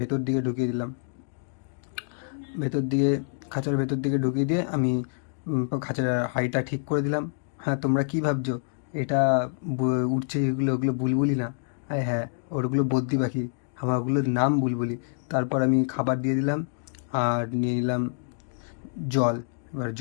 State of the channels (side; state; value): right; silent; digital silence